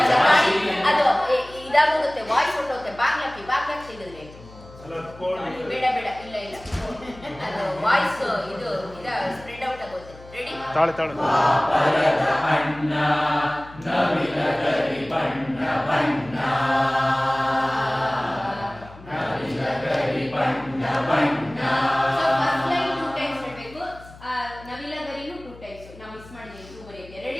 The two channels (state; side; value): noise; left; hum, 20 dB below the sound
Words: ಅದು ಇದಾಗೋಗುತ್ತೆ, ವಾಯ್ಸ್ ಹೊಟ್ಟೋಗುತ್ತೆ. ಬಾಗ್ಲಾಕಿ ತೆಗೆದ್ರೆ ಬೇಡ ಇಲ್ಲ ಅದು ವಾಯ್ಸ್ ಇದು ಸ್ಪ್ರೆಡ್ ಔಟ್ ಆಗುತ್ತೆ. ರೆಡಿ? ತಾಳೆ ಅಣ್ಣ ನವಿಲಗರಿ ಬಣ್ಣ ಬಣ್ಣ, ನವಿಲಗರಿ ಬಣ್ಣ ಬಣ್ಣ. ನವಿಲಗರಿನೂ 2 ಟೈಮ್ಸ್. ನಾವು ಮಿಸ್ ಮಾಡಿದ್ದೀವಿ 2 ಬರೆಯೋಕೆ.